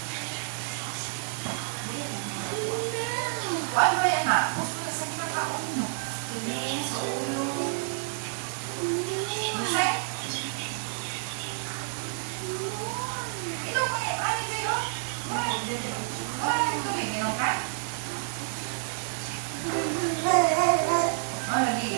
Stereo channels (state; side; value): silent; left; digital silence